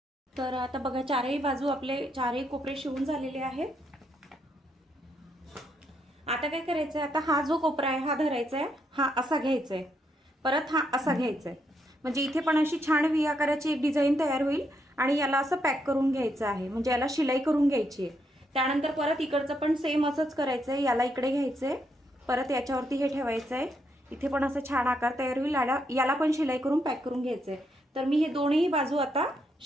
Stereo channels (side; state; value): both; normal; correlation 0.77